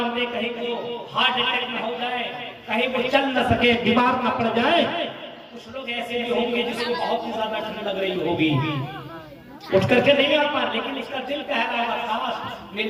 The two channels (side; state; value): both; identical; correlation 1.00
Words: दे, कहीं वो हार्ट अटैक न हो जाए, कहीं वो चल न सके, बीमार न पड़ जाए। कुछ लोग ऐसे भी होंगे जिसको बहुत ही ज्यादा ठंड लग रही होगी, उठ करके नहीं आ पा, लेकिन इसका दिल कह रहा है काश मेरी